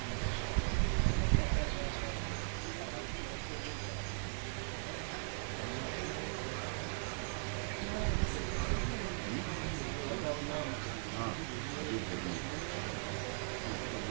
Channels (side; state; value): left; silent; 52 dB below the other